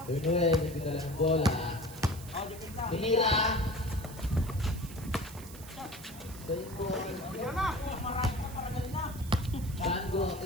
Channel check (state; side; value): noise; right; hiss, 16 dB below the sound